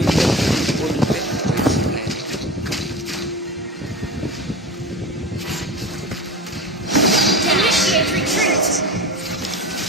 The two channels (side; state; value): both; normal; correlation 0.30